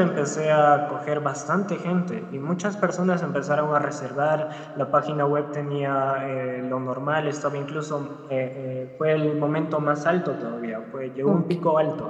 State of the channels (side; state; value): both; identical; correlation 1.00